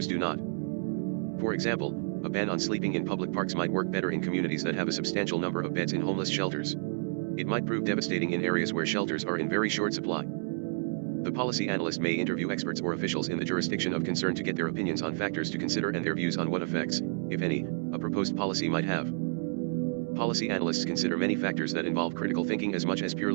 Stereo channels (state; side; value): silent; left; 58 dB below the other